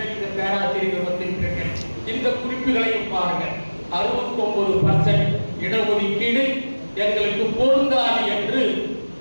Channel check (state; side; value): inverted; both; correlation -1.00